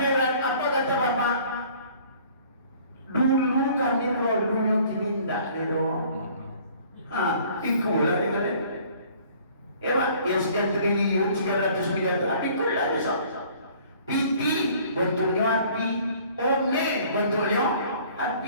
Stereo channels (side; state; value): both; inverted; correlation -0.54